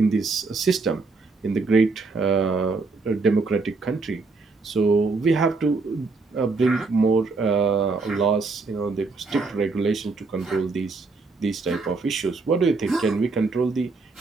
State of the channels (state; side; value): quieter; left; 4.0 dB